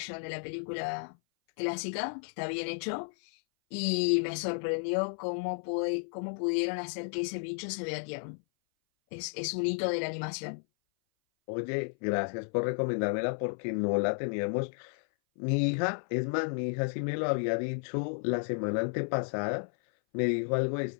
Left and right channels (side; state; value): right; silent; 56 dB below the other